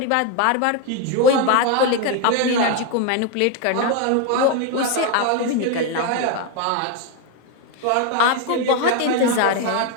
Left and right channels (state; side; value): different; both; correlation 0.02